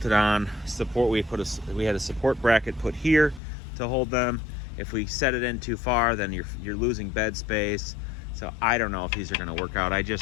on. We had a support bracket put here to hold them. If we set it in too far, then you're losing bed space. So I don't know if these are going to work out. I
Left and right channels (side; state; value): right; drops out; at 3.4 s